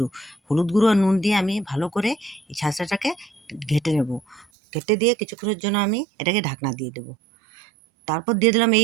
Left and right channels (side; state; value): left; drops out; at 4.5 s